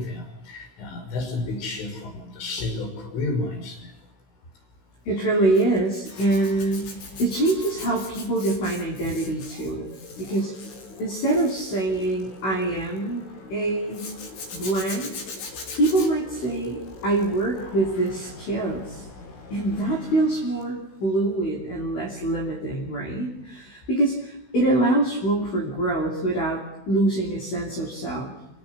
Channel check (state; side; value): late; right; 16 ms